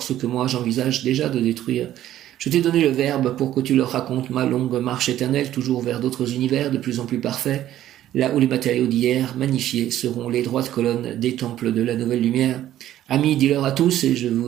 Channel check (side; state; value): left; quieter; 12.7 dB